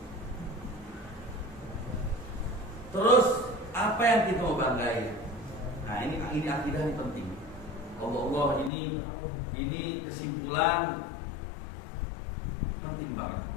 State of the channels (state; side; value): drops out; right; at 8.7 s